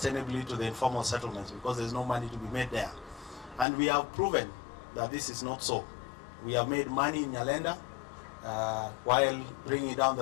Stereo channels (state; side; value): drops out; right; at 3.7 s